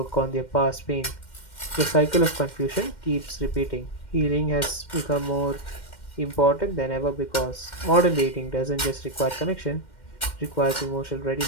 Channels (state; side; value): late; right; 2.1 ms